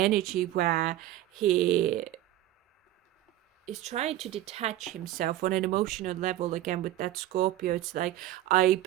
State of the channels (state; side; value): quieter; left; 14.0 dB